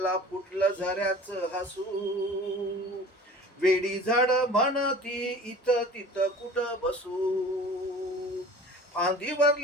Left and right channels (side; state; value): both; normal; correlation 0.42